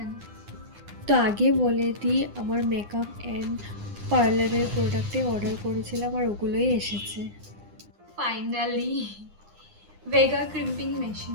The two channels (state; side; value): late; left; 9.8 ms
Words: তো আগে বলে দিই, আমার মেকআপ অ্যান্ড পার্লারের প্রোডাক্টে অর্ডার করেছিলাম আর ওগুলোই এসেছে ফাইনালি। Vega crimping